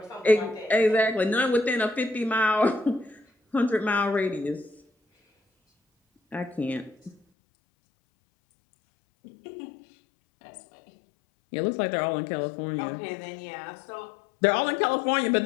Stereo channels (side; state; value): right; drops out; at 7.2 s